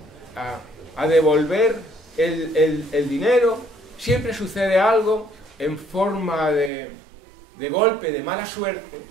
a devolver el dinero, siempre sucede algo en forma de golpe, de mala suerte,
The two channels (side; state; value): left; drops out; at 6.7 s